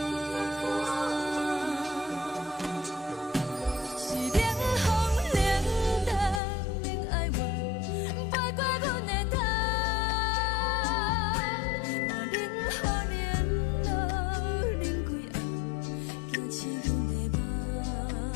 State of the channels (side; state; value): right; drops out; at 6.4 s